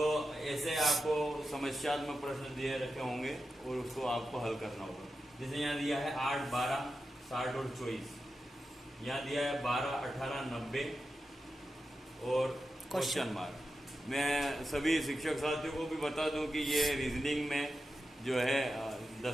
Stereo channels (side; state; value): both; normal; correlation 0.90